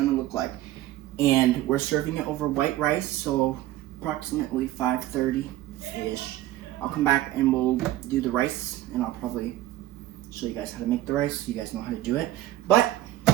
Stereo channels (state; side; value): quieter; left; 14.7 dB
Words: look like. And we're serving it over white rice, so approximately 5:30-ish. I'll come back and we'll do the rice, and I'll probably show you guys how to make the rice so you guys know how to do it. But